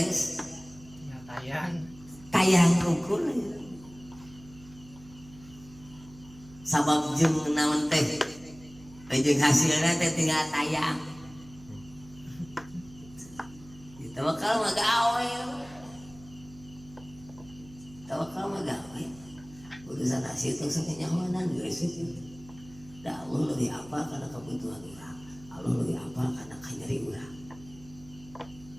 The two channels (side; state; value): right; noise; hum, 20 dB below the sound